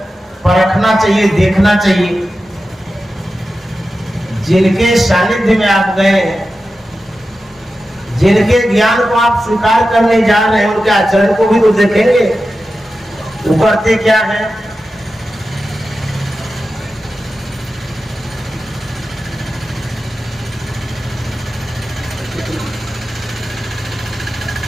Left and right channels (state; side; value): normal; both; correlation 0.92